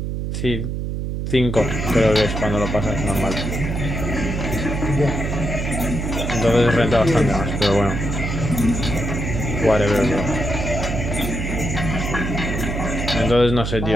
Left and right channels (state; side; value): noise; right; hum, 3 dB below the sound